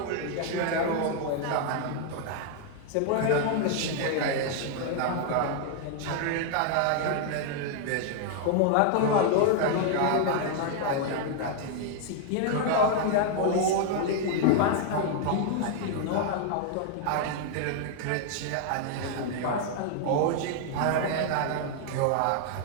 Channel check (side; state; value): both; different; correlation 0.00